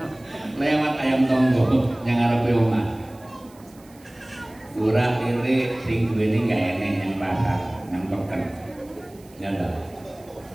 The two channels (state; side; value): noise; right; hiss, 27 dB below the sound